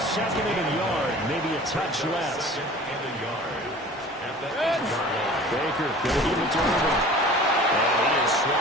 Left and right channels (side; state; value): both; normal; correlation 0.43